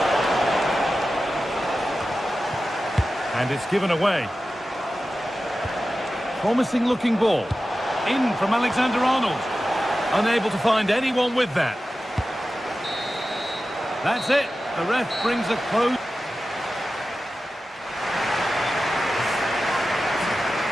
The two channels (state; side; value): normal; both; correlation 0.94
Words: And it's given away. Promising looking ball. In from Alexander-Arnold. Unable to find anyone with that. That's it. The ref brings a close.